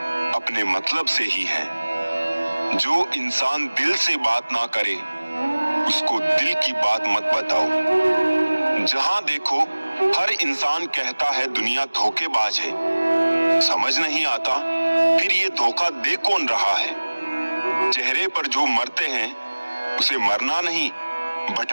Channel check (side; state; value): both; inverted; correlation -1.00